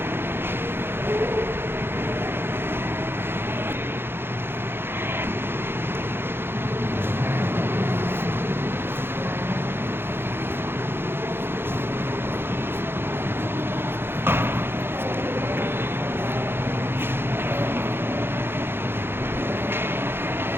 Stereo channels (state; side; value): late; left; 0.11 ms